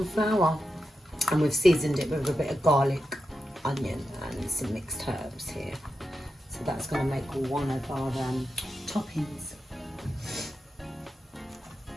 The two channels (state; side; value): normal; both; correlation 0.89